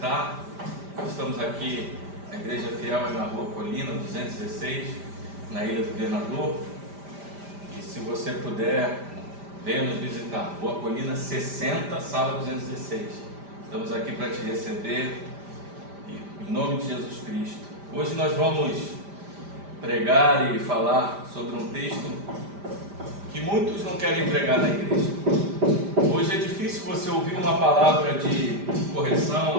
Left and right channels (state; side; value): late; left; 5.0 ms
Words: Estamos aqui, a Igreja Fiel é na Rua Colina, 216, na Ilha do Governador. E se você puder, venha nos visitar. Rua Colina 60, sala 216. Estamos aqui para te receber, em nome de Jesus Cristo. Hoje nós vamos pregar e falar sobre um texto que muitos não querem pregar na igreja. Hoje é difícil você ouvir uma palavra de correção,